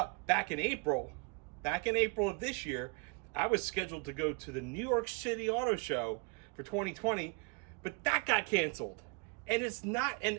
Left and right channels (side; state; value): left; quieter; 34.5 dB